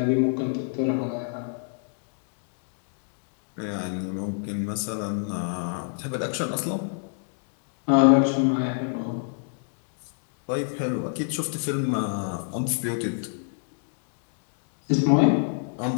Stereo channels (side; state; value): right; silent; digital silence